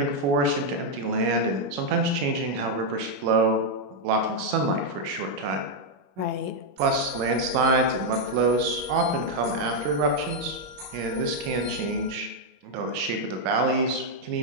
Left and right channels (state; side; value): late; left; 21 ms